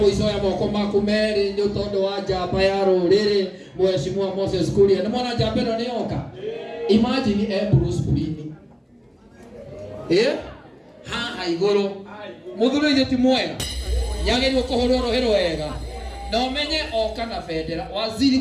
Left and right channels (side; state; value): both; identical; correlation 1.00